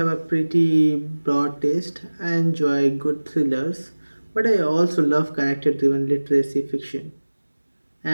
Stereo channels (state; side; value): inverted; both; correlation -1.00